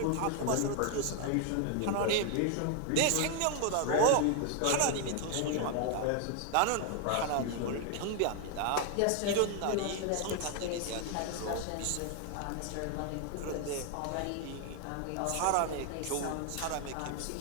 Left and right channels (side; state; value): both; different; correlation 0.00